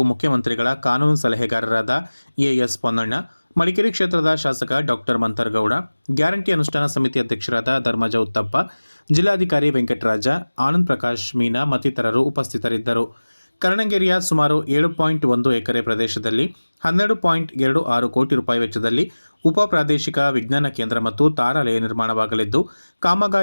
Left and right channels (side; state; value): both; inverted; correlation -1.00